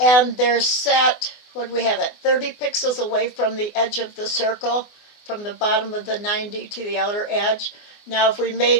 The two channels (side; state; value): right; late; 24 ms